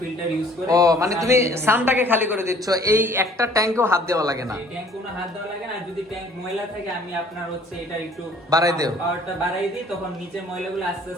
ইউজ করে। ও মানে তুমি সানটাকে খালি করে দিচ্ছ, এই একটা ট্যাঙ্কেও হাত দেওয়া লাগে না? এই ট্যাঙ্ক কোনো হাত দেওয়া লাগে না, আর যদি ট্যাঙ্ক ময়লা থাকে আমি আপনার হচ্ছে এটা একটু বাড়াই দেও, পাওয়ারটা বাড়াই দিই, তখন নিচের ময়লাগুলো আস্তে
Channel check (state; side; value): normal; both; correlation 0.55